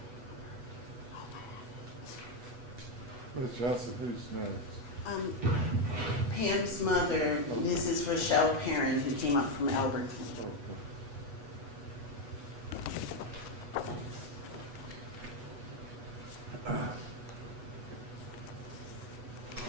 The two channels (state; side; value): late; left; 8.2 ms